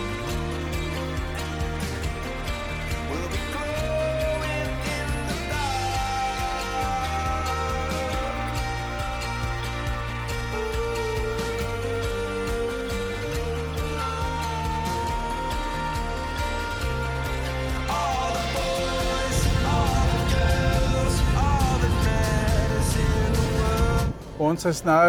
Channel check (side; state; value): both; identical; correlation 1.00